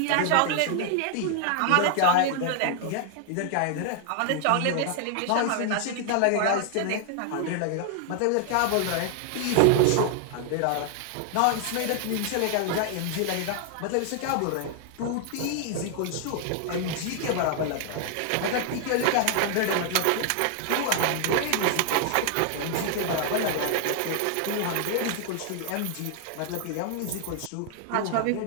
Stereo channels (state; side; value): different; both; correlation 0.00